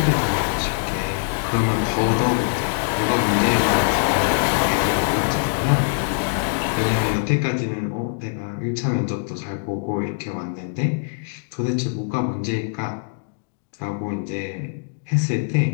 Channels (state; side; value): silent; right; digital silence